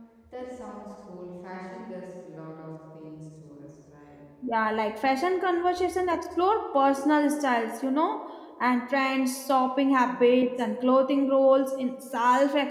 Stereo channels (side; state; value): both; identical; correlation 1.00